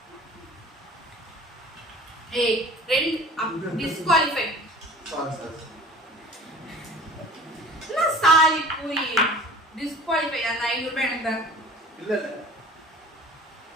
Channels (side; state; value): both; normal; correlation 0.45